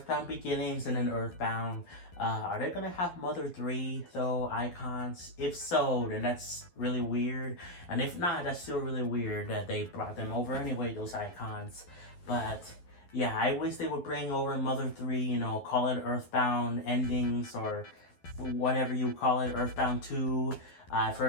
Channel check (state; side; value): late; right; 11 ms